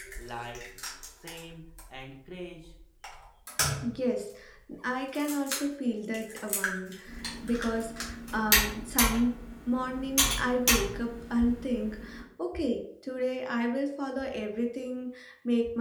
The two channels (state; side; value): identical; both; correlation 1.00